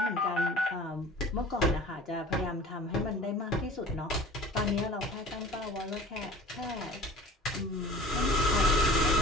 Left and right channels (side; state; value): both; normal; correlation 0.43